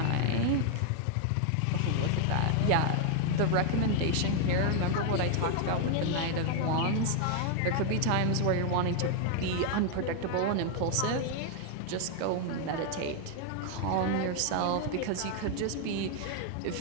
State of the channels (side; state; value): both; different; correlation 0.00